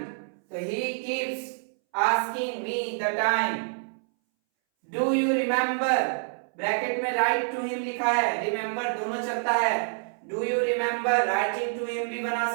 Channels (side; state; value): left; silent; 60 dB below the other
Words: तो he keeps asking me the time। do you remember, bracket में write to him लिखा है, remember दोनों चलता है, do you remember writing to him भी बना